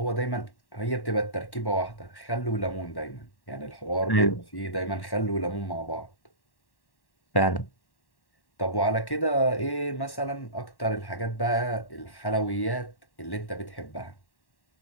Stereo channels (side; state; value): right; late; 1.1 ms